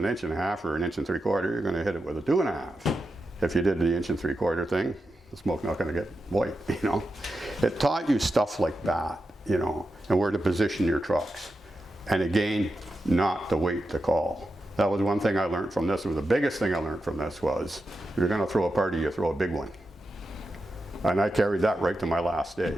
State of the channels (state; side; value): normal; both; correlation 0.89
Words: 1.5 inches or 1 3/4 inches. You're going to hit it with a 2.5 inches. If you did the 1 3/4 inch thing, the smoke's not going to get white, It taught you stuff like that, and where to position your trucks. And again, not to wait to call. That was one thing I learned from this. It was the biggest thing I learned from this was, if you're going to throw a party, you throw a big one. And I carried that right to my last day.